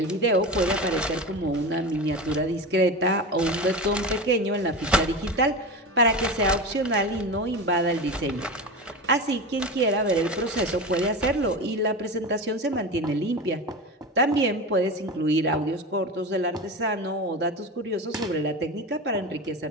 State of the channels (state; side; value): normal; both; correlation 0.25